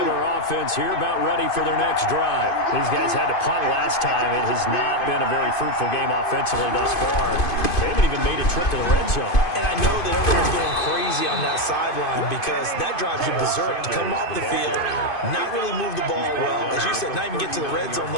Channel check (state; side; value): late; right; 2.5 ms